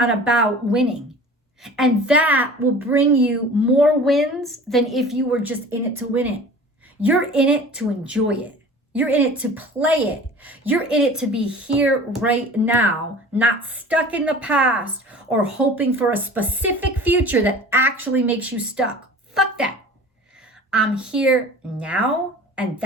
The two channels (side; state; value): both; normal; correlation 0.42